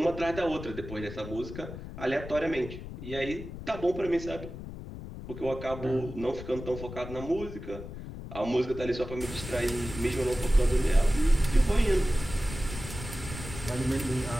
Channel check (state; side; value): noise; left; rumble, 10 dB below the sound